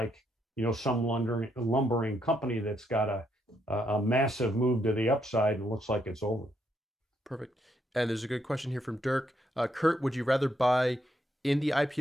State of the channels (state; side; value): normal; both; correlation 0.76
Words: some lumbering company that's got a massive move to the upside and looks like it's over. Perfect. And there's a good question here from Dirk. Kurt, would you rather buy in the